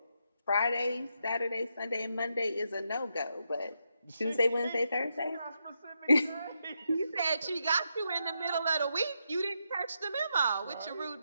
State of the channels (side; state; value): both; inverted; correlation -0.82